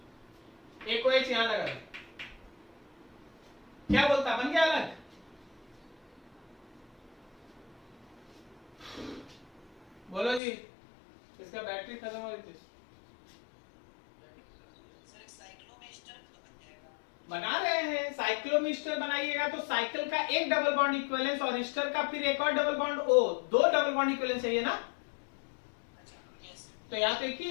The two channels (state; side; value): drops out; right; at 10.4 s